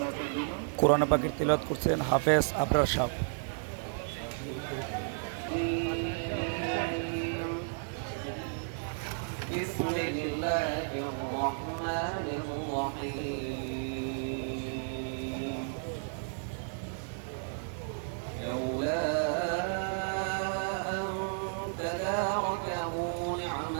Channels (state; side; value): silent; left; digital silence